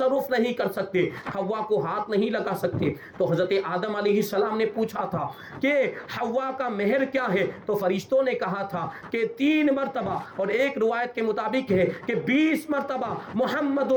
نہیں کر سکتے, حوا کو ہاتھ نہیں لگا سکتے. تو حضرت آدم علیہ السلام نے پوچھا تھا کہ حوا کا مہر کیا ہے, تو فرشتوں نے کہا تھا کہ 3 مرتبہ, اور ایک روایت کے مطابق ہے کہ 20 مرتبہ محمد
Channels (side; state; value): both; identical; correlation 1.00